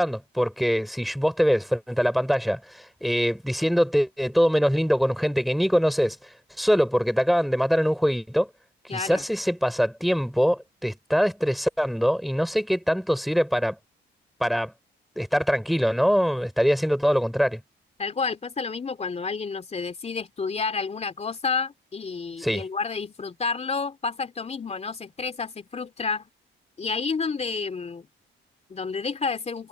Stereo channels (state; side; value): normal; both; correlation 0.88